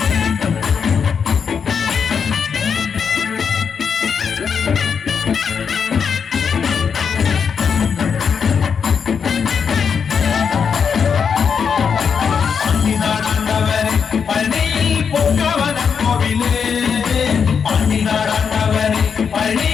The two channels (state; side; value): quieter; right; 6.6 dB